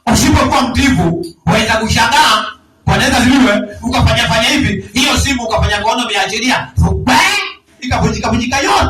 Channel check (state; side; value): identical; both; correlation 1.00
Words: Usipokuwa mtiifu, waweza kushangaa. Bwana Yesu asifiwe. Ukafanya hivi, hiyo simu ukafanya kono umeachilia. Ikavunjika yote.